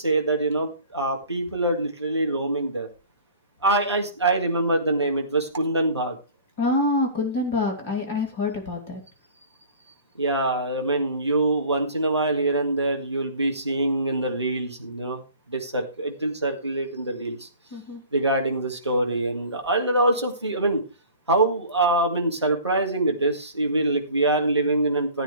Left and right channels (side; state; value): both; inverted; correlation -0.47